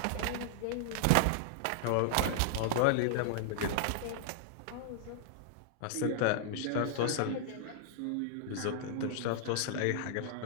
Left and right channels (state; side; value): different; both; correlation -0.01